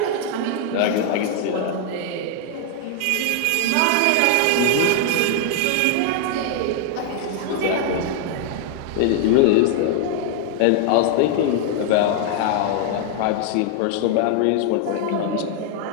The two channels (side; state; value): both; different; correlation 0.00